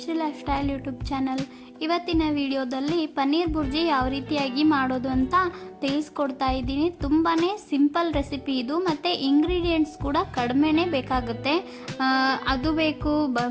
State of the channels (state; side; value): identical; both; correlation 1.00